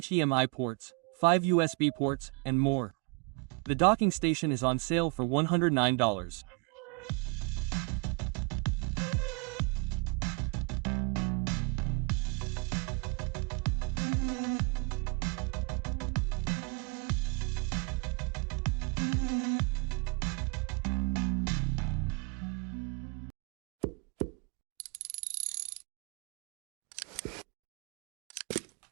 ports, 5 USB ports, and more. The docking station is on sale for $109.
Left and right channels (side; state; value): left; quieter; 32.2 dB